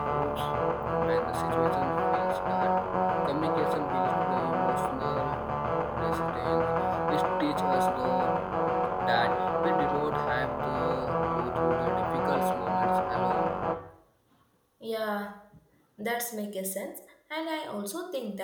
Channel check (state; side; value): identical; both; correlation 1.00